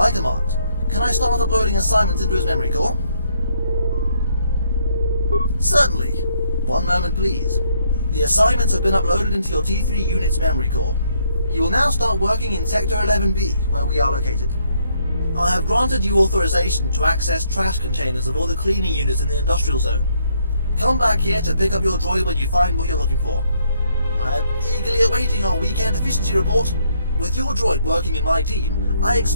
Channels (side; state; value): both; inverted; correlation -0.71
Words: command. Can I start uploading assignments into his memory core? Certainly. One moment, please. The assignments have been uploaded into your T3 unit's memory core. You will now start working in Sector 11B, where we are located. I have granted you authorization to access trash containers of all the cleaning units in the industrial zone. Come back here to pick up your droid when you find what you're looking for. I am eagerly awaiting our weekend efficiency report. With your droid working in my team, I